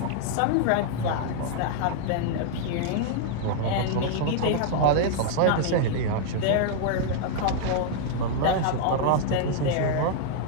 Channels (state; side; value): different; both; correlation -0.01